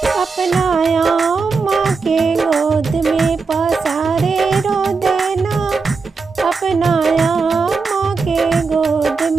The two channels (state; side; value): quieter; left; 4.7 dB